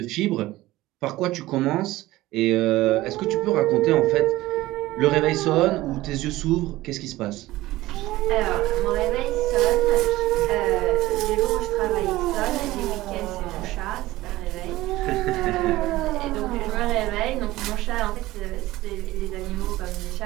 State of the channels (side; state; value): left; quieter; 17.4 dB